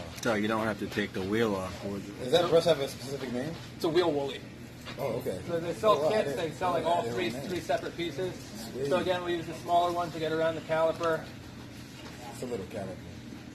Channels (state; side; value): identical; both; correlation 1.00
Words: So you don't have to take the wheel off. Does that brush have a specific name? It's a wheel woolly. Oh, okay. So they sell Oh, wow, I kits, didn't- they sell like all I three didn't know. separate pieces. Sweet. So again, we use the smaller one to get around the caliper. It's a little caliper.